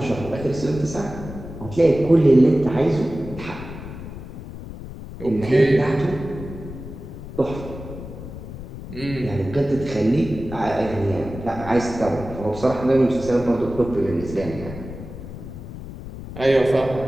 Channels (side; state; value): left; noise; rumble, 11 dB below the sound